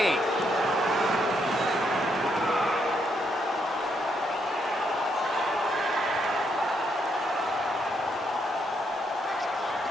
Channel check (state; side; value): normal; both; correlation 0.76